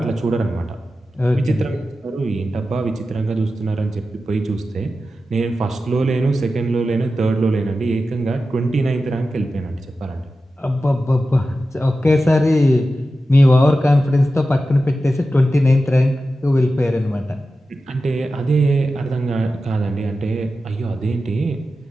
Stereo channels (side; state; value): both; normal; correlation 0.92